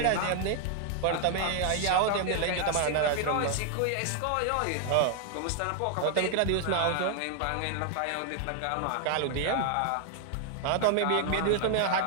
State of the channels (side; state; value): both; different; correlation 0.00